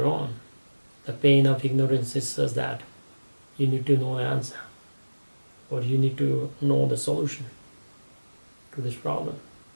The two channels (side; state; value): both; inverted; correlation -1.00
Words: own. The pain of ignorance is such that you need to know the answer, or you need to know the solution to this problem.